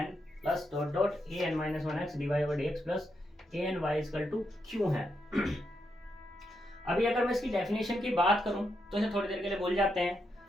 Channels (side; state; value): both; normal; correlation 0.82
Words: plus dot dot A N minus one x D Y over D x plus A N Y equal to Q है। अभी अगर मैं इसकी डेफिनेशन की बात करूं तो इसे थोड़ी देर के लिए भूल जाते हैं।